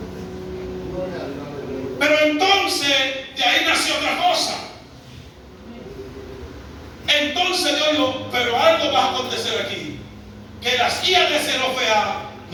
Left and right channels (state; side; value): identical; both; correlation 1.00